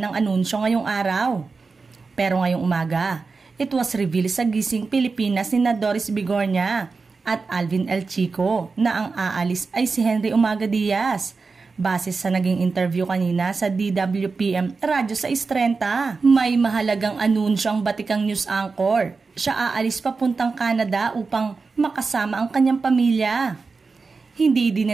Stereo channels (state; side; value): quieter; left; 4.4 dB